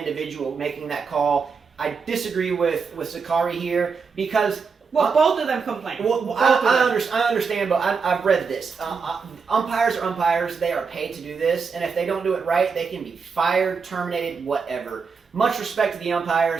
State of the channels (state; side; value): quieter; left; 5.4 dB